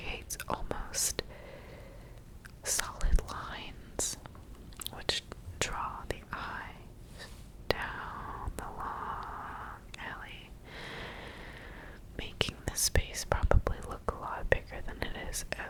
almost solid lines which draw the eye down the long alley, making the space probably look a lot bigger than it is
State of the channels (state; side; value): identical; both; correlation 1.00